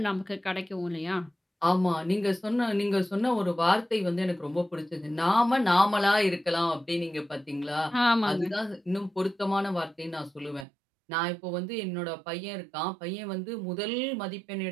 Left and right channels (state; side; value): drops out; left; at 10.7 s